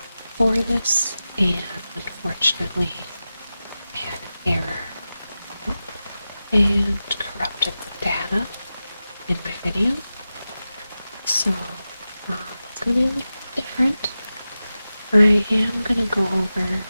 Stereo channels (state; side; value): inverted; both; correlation -0.94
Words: for this and unfortunately I had an error and corrupted the data in my video. So it's going to be a little different. I am going to go over